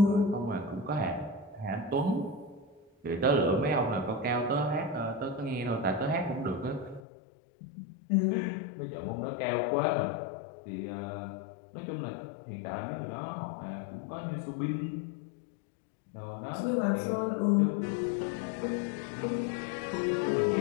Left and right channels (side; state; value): right; drops out; at 7.1 s